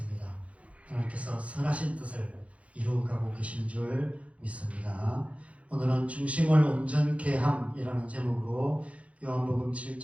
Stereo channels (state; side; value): late; left; 0.064 ms